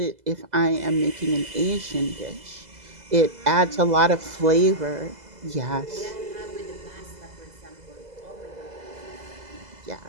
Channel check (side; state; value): left; late; 2.0 ms